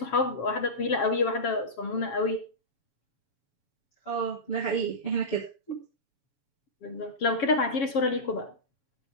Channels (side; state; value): right; late; 7.3 ms